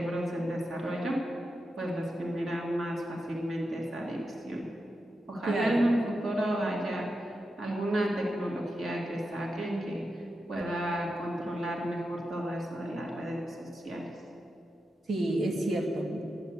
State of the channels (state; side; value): normal; both; correlation 0.88